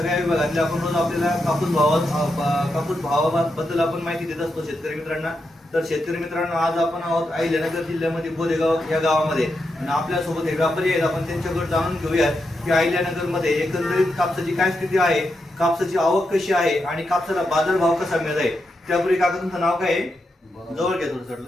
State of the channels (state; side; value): normal; both; correlation 0.85